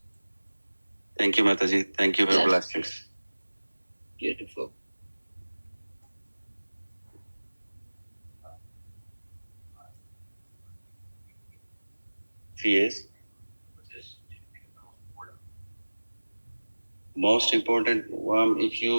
Thank you, Mataji. Thank you for your blessings. Beautiful. Yes. Most important, if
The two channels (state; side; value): inverted; both; correlation -1.00